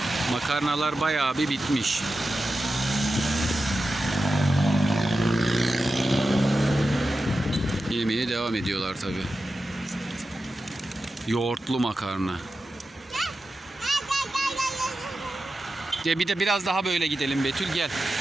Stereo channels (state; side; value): normal; both; correlation 0.92